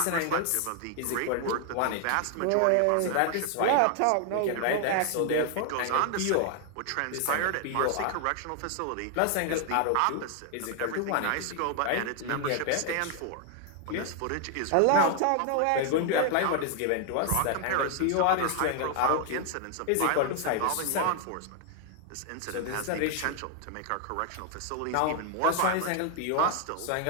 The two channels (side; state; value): both; different; correlation 0.00